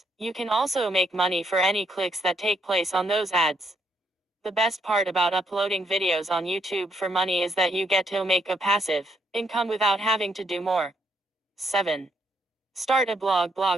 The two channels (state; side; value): normal; both; correlation 0.74